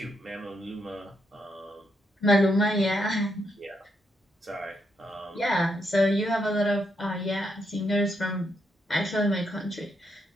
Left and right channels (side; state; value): both; normal; correlation 0.79